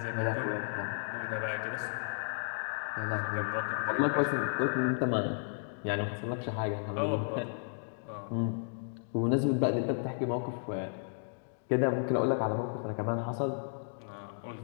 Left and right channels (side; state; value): right; silent; digital silence